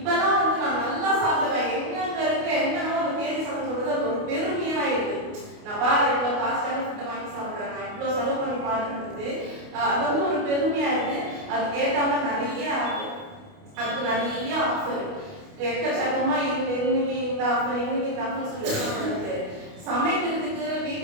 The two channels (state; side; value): late; left; 28 ms